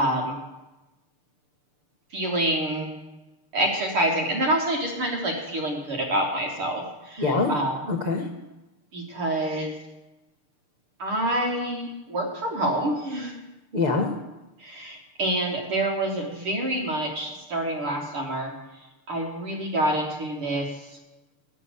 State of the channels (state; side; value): late; left; 6.7 ms